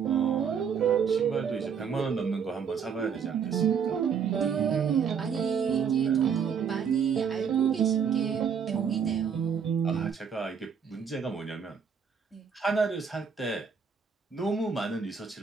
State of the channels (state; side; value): quieter; left; 6.7 dB